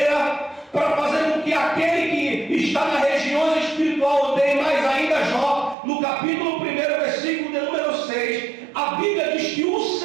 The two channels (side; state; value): left; drops out; at 5.8 s